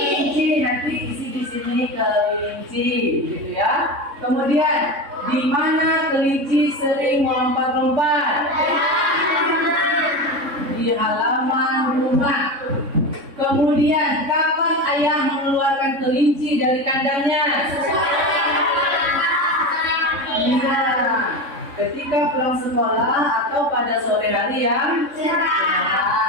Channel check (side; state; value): left; late; 3.6 ms